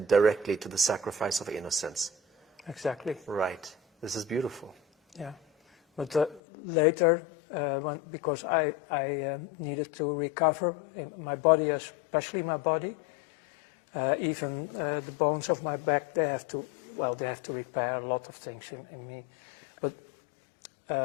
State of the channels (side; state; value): right; drops out; at 6.4 s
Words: directly to the sacrifice of innocence. Exactly. Right. This is beautiful. Yeah. But later, because I needed to recover in my body, especially my body, even the bones of my back, they have to repair a lot of things in me. But